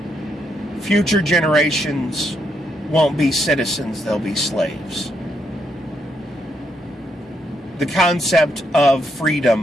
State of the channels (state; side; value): normal; both; correlation 0.77